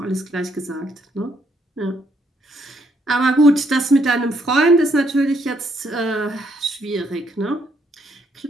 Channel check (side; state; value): both; normal; correlation 0.72